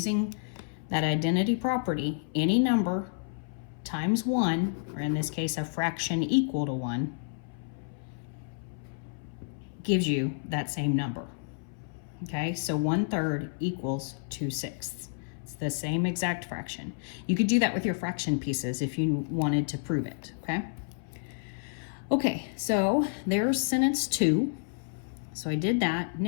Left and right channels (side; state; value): right; silent; 58 dB below the other